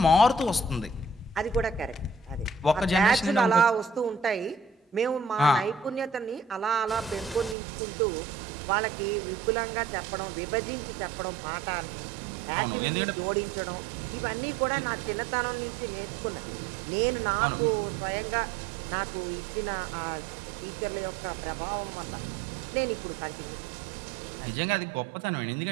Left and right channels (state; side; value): drops out; left; at 7.6 s